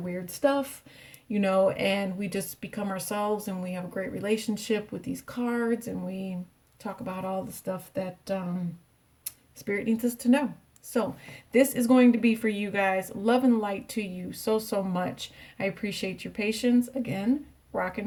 weird stuff, and we just become ourselves, and we have a great relationship with these cards, and we talk about all the stuff that Spirit needs us to know. So this is going to be for you guys. Love and light to you so much. I appreciate your patience. Again,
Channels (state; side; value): identical; both; correlation 1.00